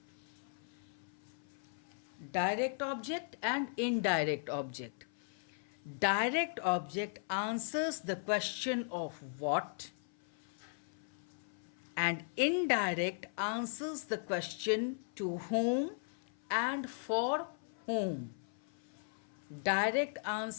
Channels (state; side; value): silent; right; 53 dB below the other